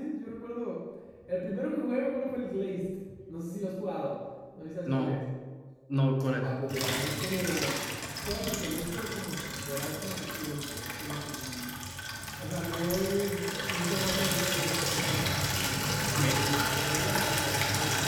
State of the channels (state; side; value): identical; both; correlation 1.00